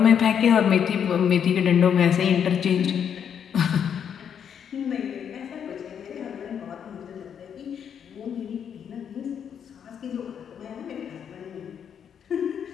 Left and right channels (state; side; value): quieter; right; 8.1 dB